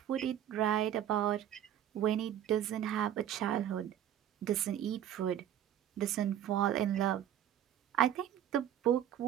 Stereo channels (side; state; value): left; quieter; 10.8 dB